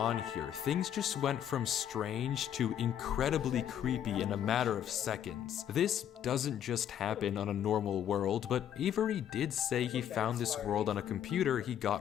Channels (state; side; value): quieter; right; 10.0 dB